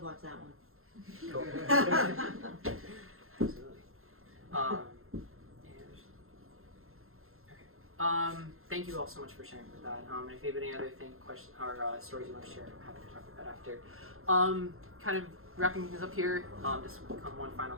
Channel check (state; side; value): late; left; 0.61 ms